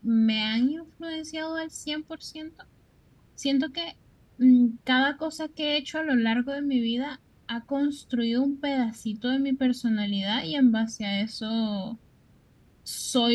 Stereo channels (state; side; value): identical; both; correlation 1.00